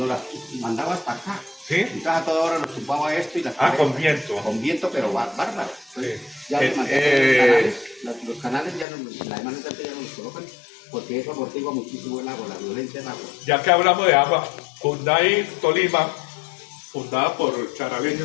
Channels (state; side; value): drops out; right; at 8.8 s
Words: las mandaba hasta acá. ¿Sí? Entonces a toda hora nos tumbaba esto y las Con viento. Con viento, pero bárbaro. Entonces, Sí. ya los canales ya no, la demanda ya no los colocan porque eso amortigua muchísimo el agua, la violencia del agua. Ya que hablamos de agua, Cunday, Tolima, fundada por